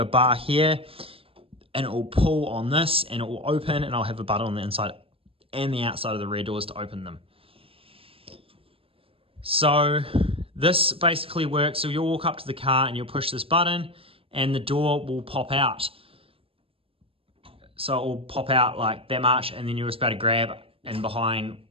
bar here, and it will pull on this, and it will open, and I'll have a button on the inside and the outside of the rear doors to open them. So this basically works. So you'll walk up to the car and you'll push this button, and the door will pop out. So it will pop out like that much, and then you're just about to grab and behind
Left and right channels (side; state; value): left; late; 0.27 ms